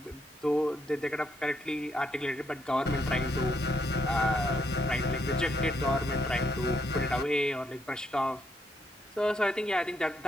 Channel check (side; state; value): both; normal; correlation 0.76